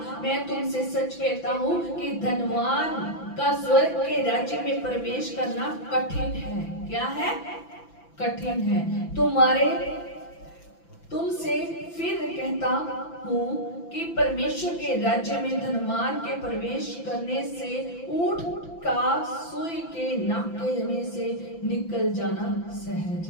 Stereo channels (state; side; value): late; right; 5.9 ms